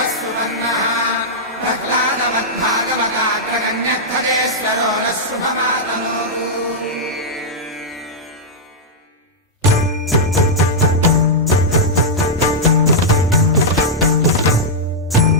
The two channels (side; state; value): both; normal; correlation -0.07